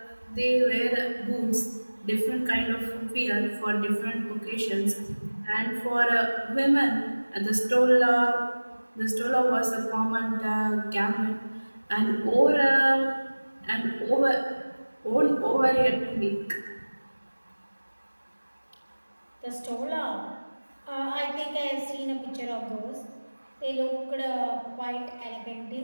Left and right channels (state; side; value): inverted; both; correlation -1.00